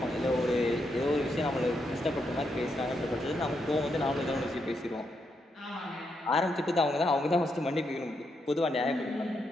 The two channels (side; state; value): both; normal; correlation 0.81